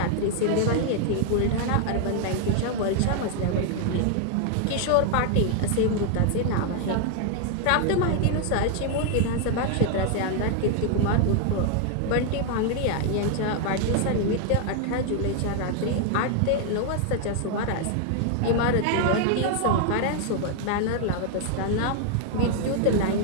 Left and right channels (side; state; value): both; different; correlation 0.00